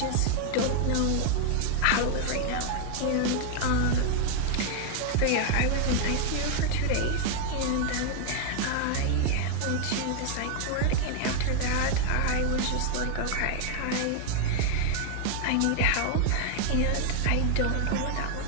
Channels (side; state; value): both; different; correlation 0.00